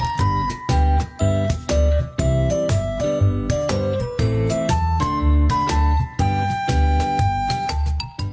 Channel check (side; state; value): both; identical; correlation 1.00